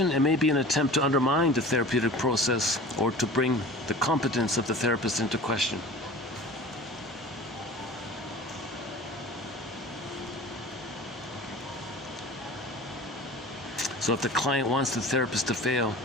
it may be an attempt to undermine the therapeutic process or to bring the competence of the therapist into question. So if the client wants the therapist to fail,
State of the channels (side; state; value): both; normal; correlation 0.40